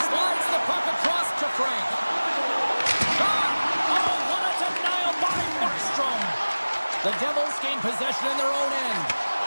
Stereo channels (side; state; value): both; inverted; correlation -1.00